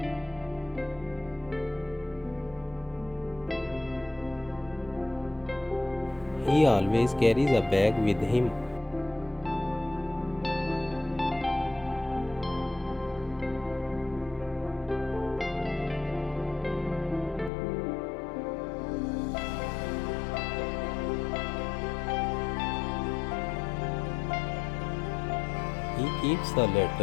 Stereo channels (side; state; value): right; drops out; at 17.5 s